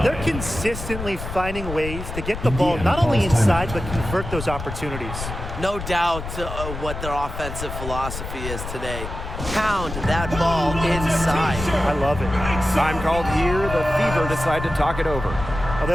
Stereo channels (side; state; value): left; noise; rumble, 8 dB below the sound